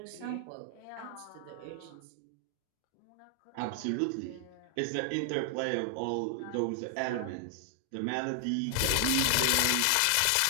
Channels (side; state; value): both; different; correlation 0.00